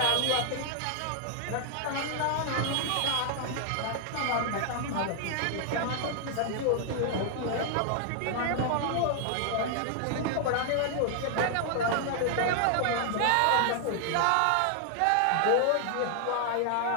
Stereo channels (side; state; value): both; different; correlation 0.00